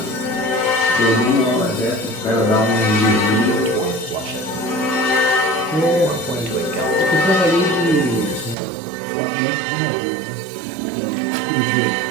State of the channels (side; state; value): left; drops out; at 8.6 s